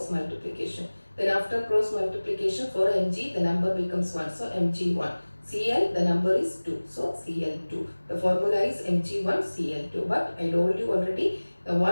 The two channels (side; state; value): both; inverted; correlation -1.00